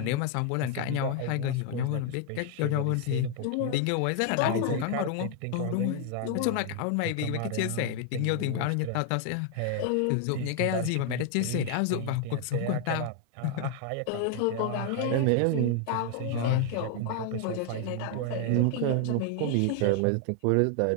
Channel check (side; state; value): both; different; correlation 0.00